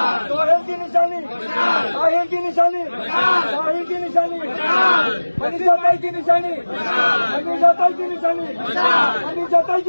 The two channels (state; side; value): inverted; both; correlation -1.00